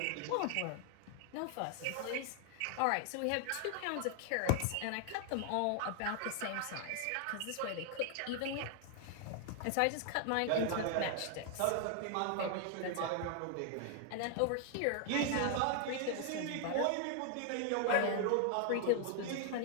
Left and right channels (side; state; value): both; different; correlation 0.00